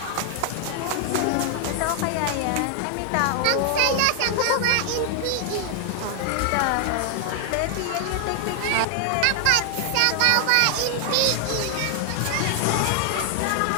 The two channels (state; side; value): different; both; correlation -0.01